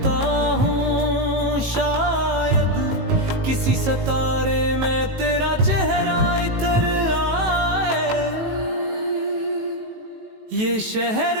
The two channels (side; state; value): left; late; 18 ms